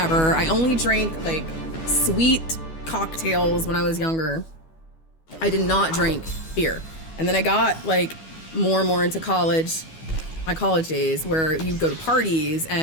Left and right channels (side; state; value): right; late; 12 ms